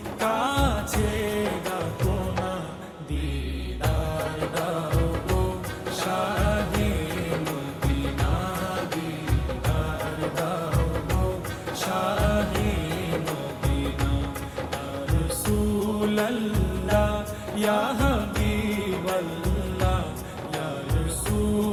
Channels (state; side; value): identical; both; correlation 1.00